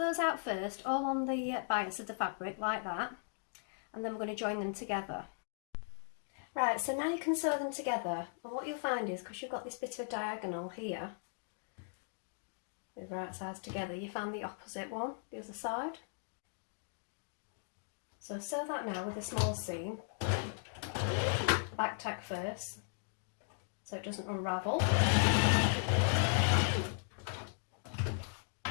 out first, all on the bias of the fabric like that, and then we're going to join them together. Right, so now you can sew them together, and what you'll find is, because you've got this bit of diagonal here, with right sides together, you find the opposite one, the other side. So sew that now with a small seam, back tack first, so it doesn't unravel.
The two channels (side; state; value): right; silent; digital silence